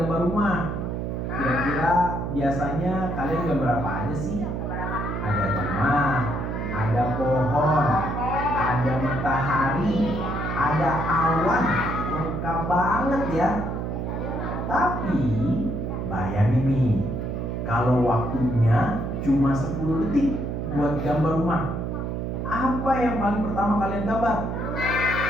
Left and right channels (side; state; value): right; noise; hum, 3 dB below the sound